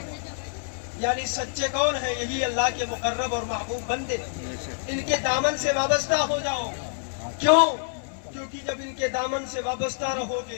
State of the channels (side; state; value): right; silent; 60 dB below the other